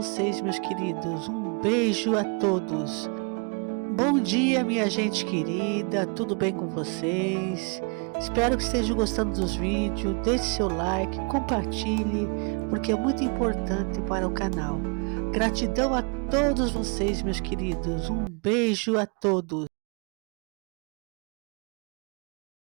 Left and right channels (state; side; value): quieter; left; 35.1 dB